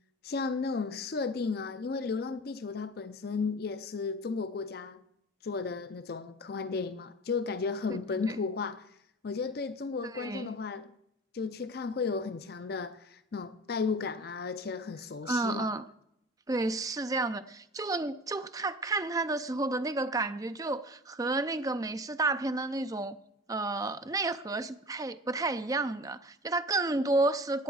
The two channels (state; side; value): normal; both; correlation 0.37